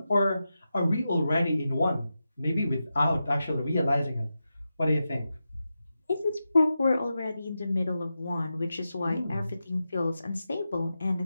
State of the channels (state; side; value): inverted; both; correlation -0.90